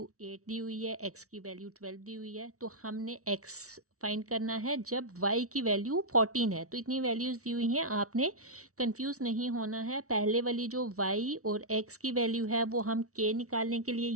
8 दी हुई है, x की वैल्यू 12 दी हुई है, तो हमने x फाइंड करना है जब y की वैल्यू 14 है। तो इतनी वैल्यूज़ दी हुई हैं, आपने कंफ्यूज नहीं होना है। पहले वाली जो y और x की वैल्यू है वो हम k निकालने के लिए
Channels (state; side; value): late; left; 0.64 ms